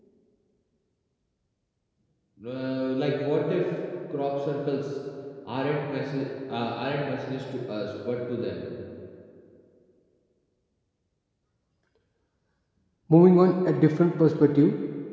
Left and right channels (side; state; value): both; identical; correlation 1.00